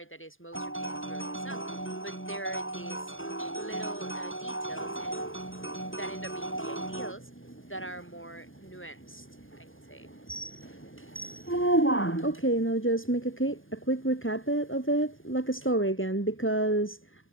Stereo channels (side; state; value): right; late; 0.59 ms